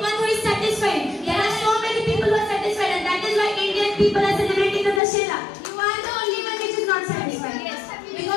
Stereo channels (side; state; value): right; drops out; at 5.0 s